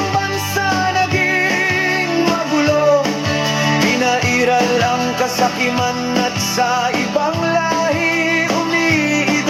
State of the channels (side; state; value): both; identical; correlation 1.00